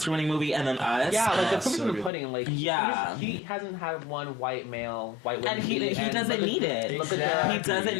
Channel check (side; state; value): right; drops out; at 2.1 s